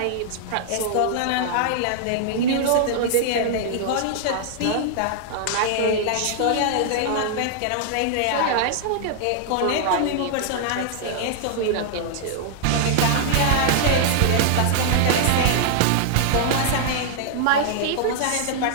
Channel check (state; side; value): different; both; correlation -0.01